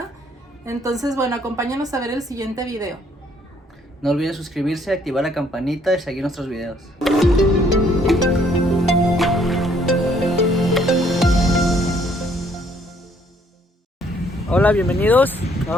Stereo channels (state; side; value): normal; both; correlation 0.65